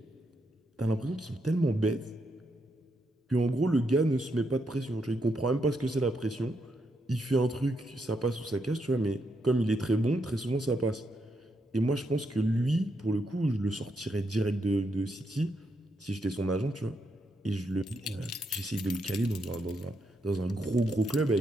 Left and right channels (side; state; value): both; normal; correlation 0.80